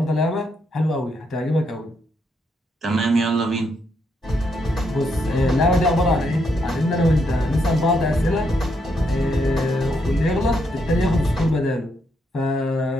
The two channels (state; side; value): normal; both; correlation 0.77